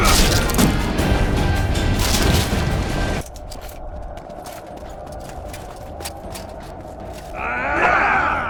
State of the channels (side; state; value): both; identical; correlation 1.00